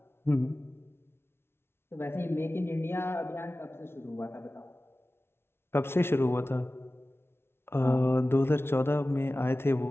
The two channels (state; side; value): late; right; 0.12 ms